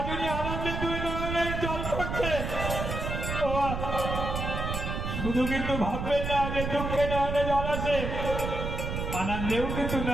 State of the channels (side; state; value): right; noise; rumble, 3 dB below the sound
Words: উনি আনন্দে 2 নয়নের জল করছে। শুধু কিন্তু ভাববেন না যে দুঃখে নয়নে জল আসে, আনন্দেও কিন্তু